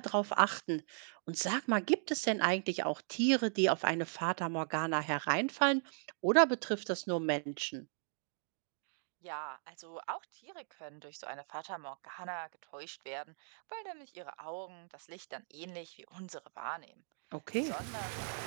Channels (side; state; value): left; silent; digital silence